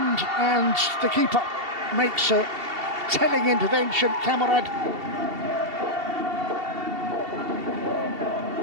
and the keeper makes a telling intervention. Camarade.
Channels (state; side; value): late; left; 2.7 ms